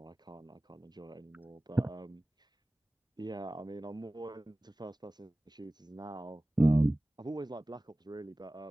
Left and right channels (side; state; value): both; normal; correlation 0.98